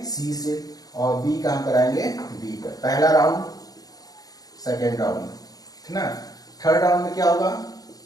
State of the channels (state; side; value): late; right; 0.18 ms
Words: सी से, और बी का हम कराएंगे बी का। पहला राउंड, सेकेंड राउंड, ठीक ना। थर्ड राउंड में क्या होगा,